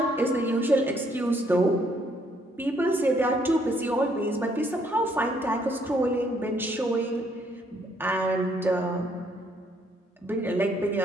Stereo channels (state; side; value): normal; both; correlation 0.69